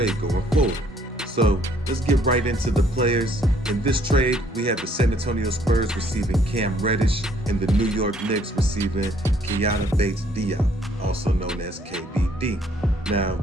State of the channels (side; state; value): both; normal; correlation 0.64